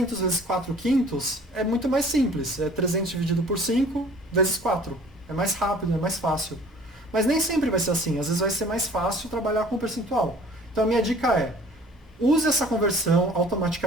vezes 4 quintos é muito mais simples. É 300 dividido por 5 vezes 4. É mais rápido, é mais fácil. Mas nem sempre vai ser assim. Às vezes vai ser mais fácil trabalhar com percentual. Então a minha dica é, use essa conversão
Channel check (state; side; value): normal; both; correlation 0.50